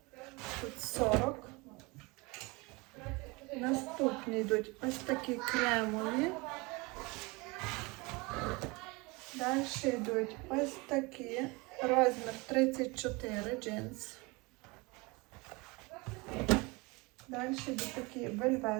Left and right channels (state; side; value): quieter; left; 25.9 dB